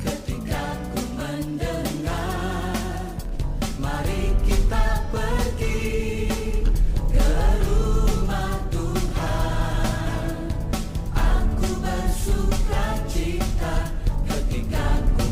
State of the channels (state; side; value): identical; both; correlation 1.00